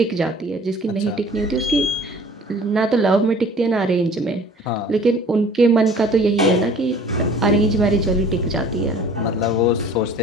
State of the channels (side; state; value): both; normal; correlation 0.48